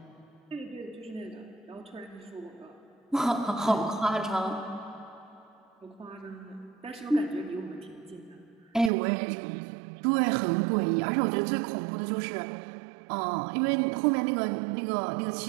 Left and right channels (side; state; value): left; drops out; at 8.9 s